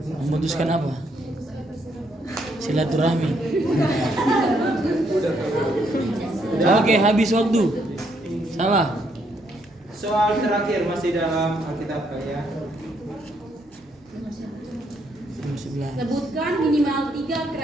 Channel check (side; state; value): both; normal; correlation 0.73